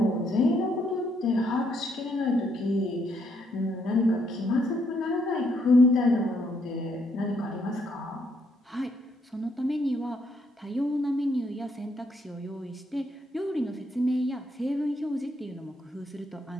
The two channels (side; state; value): both; normal; correlation 0.73